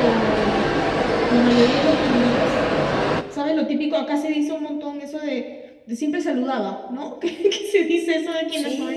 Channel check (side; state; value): both; identical; correlation 1.00